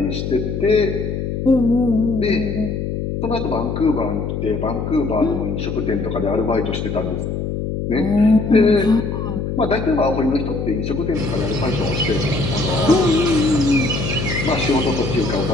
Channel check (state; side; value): noise; left; hum, 3 dB below the sound